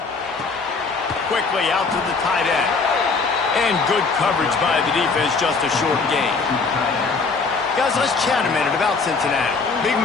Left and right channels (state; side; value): quieter; right; 4.4 dB